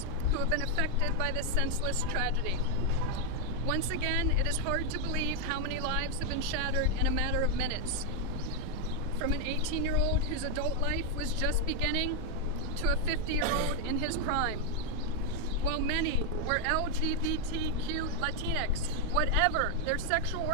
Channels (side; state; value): both; different; correlation 0.01